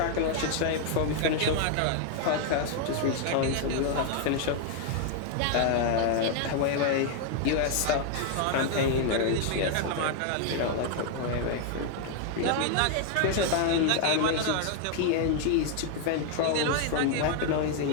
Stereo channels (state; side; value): different; both; correlation 0.00